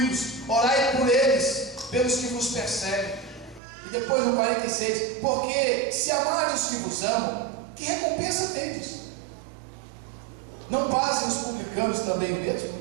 orai por eles, pelos que vos perseguem. E depois no 46, porque se amarem os que vos amam, que recompensa tendes? Não fazem os publicanos também o mesmo?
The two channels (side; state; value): left; drops out; at 3.6 s